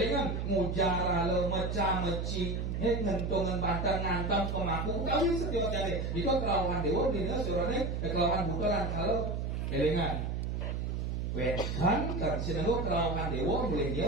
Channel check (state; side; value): noise; right; hum, 2 dB below the sound